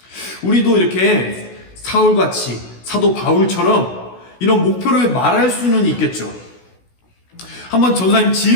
우리도 이렇게 사울같이 사도 바울처럼 이런 목표를 말할 수는 있겠죠. 한번 전사님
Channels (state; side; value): late; right; 16 ms